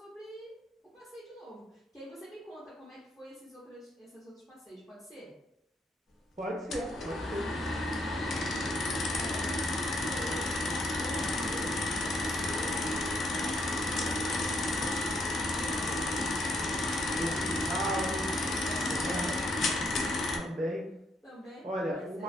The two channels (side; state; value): both; normal; correlation 0.72